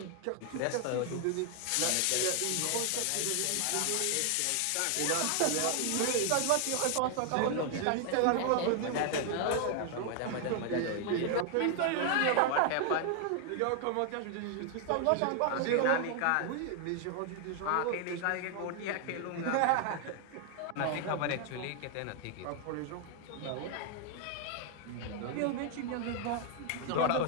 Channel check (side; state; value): both; different; correlation 0.00